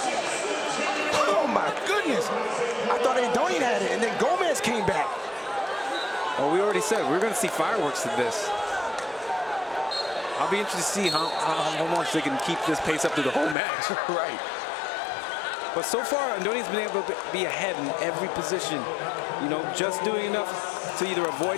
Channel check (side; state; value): right; drops out; at 13.6 s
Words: Oh my goodness! I thought Andonian had it, and then Gomez came back. Well, we already said we're going to see fireworks of this. I'll be interested to see how much they can keep this pace up through the whole match. Right. But so far, Andonian's been able to be ahead in every position. Just doing enough to either